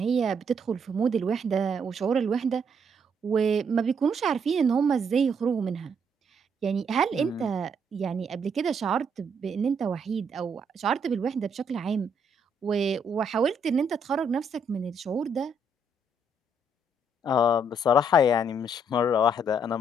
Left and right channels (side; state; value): both; normal; correlation 0.71